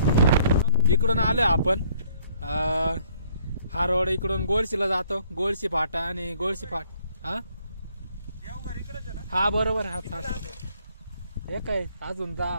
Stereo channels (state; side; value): inverted; both; correlation -0.63